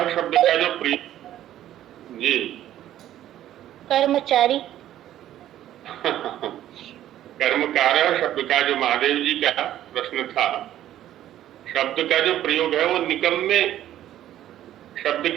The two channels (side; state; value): left; quieter; 12.4 dB